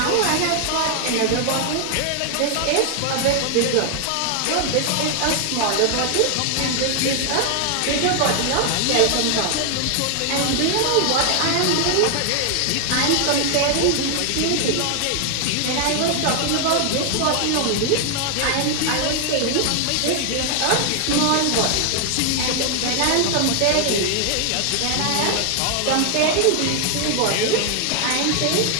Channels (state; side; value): different; both; correlation 0.00